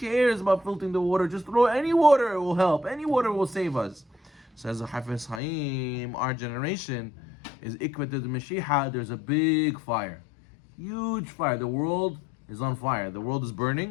about filtering the water? Just throw any water, it will help. Any water will save us. Says the Hafez Chaim, our generation is Ikvat the Mashiach. There's a big fire. Huge fire. The world is on fire. The world is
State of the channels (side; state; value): right; drops out; at 5.4 s